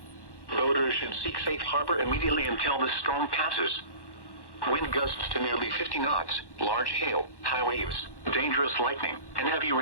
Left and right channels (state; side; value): late; right; 1.1 ms